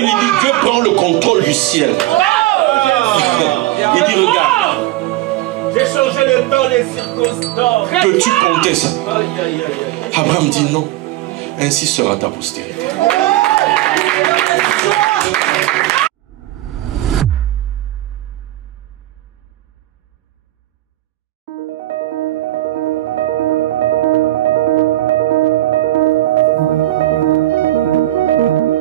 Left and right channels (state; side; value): quieter; left; 15.8 dB